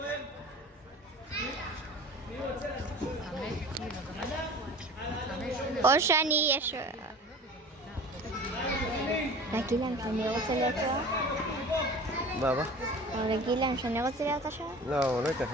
או שאני יש... להגיד להם שאני רוצה להיות שוער? מה? או להגיד להם שאני רוצה להיות השוער? לא, הוא לא ייתן לך,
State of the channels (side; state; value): both; normal; correlation 0.40